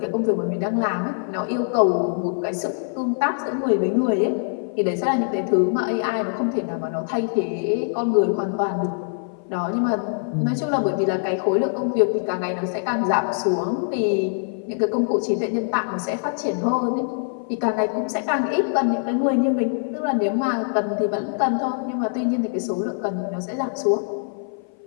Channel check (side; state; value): right; silent; 58 dB below the other